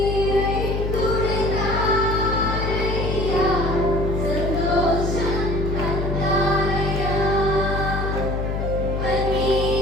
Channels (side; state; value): left; noise; hum, 2 dB below the sound